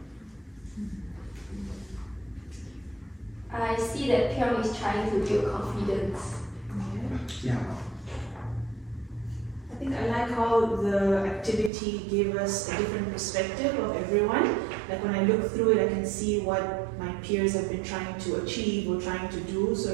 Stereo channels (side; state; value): left; drops out; at 11.7 s